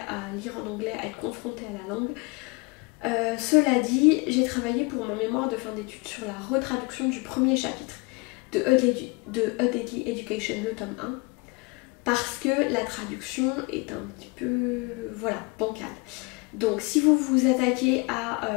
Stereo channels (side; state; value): right; quieter; 27.1 dB